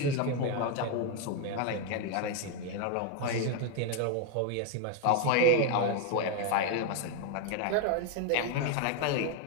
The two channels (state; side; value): different; both; correlation 0.01